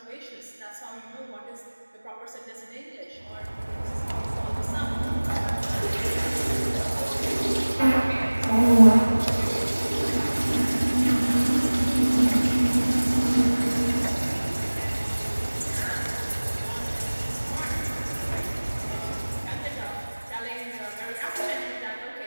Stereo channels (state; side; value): inverted; both; correlation -1.00